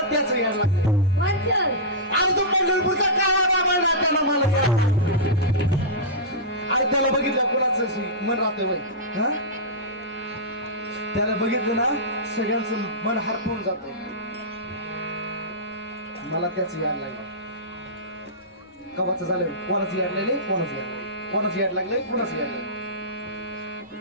त्याचं याड लागलं कोणतं आणि तो पंढरपूरचा काळा बाबा त्याला मला याड आणि त्याला बघितलं कोणाचं मन राहतंय बाई हा त्याला बघितलं ना सगळ्यांचं मन हरपून जात मला त्याच याड लागलं कवाचं झालं कोणाचं याड लागले कोणाचं याड लागलंय कोणाचं याड लागलंय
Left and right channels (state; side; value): normal; both; correlation -0.15